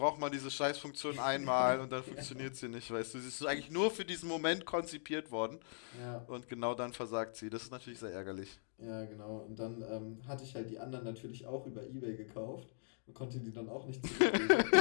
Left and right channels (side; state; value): right; silent; digital silence